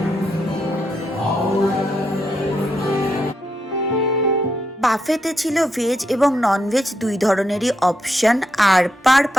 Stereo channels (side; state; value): both; normal; correlation 0.81